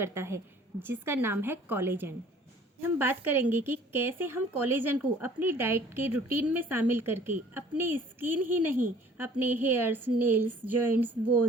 है, जिसका नाम है कोलेजन। हम बात करेंगे कि कैसे हम कोलेजन को अपनी डाइट के रूटीन में शामिल करके अपनी स्किन ही नहीं, अपने हेयर्स, नेल्स, जॉइंट्स,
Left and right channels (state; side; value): normal; both; correlation 0.53